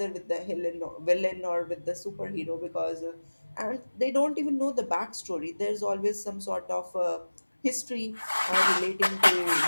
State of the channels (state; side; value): inverted; both; correlation -1.00